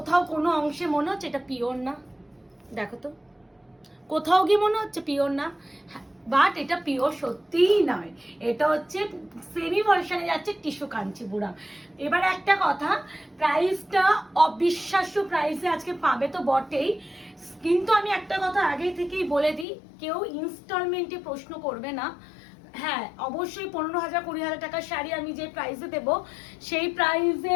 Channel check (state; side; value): drops out; right; at 19.7 s